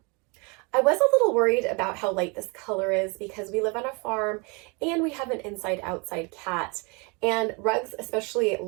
I was a little worried about how light this color is because we live on a farm and we have an inside-outside cat, and rugs, especially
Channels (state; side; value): quieter; left; 30.5 dB